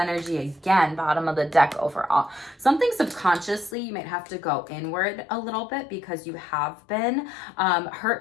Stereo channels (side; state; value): right; drops out; at 3.8 s